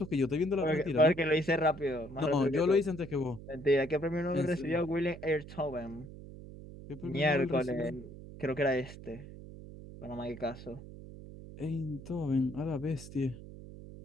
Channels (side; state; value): right; noise; hum, 14 dB below the sound